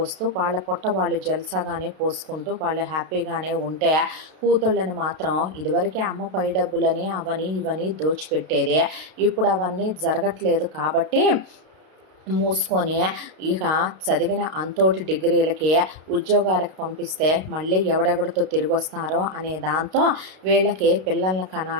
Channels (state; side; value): late; left; 32 ms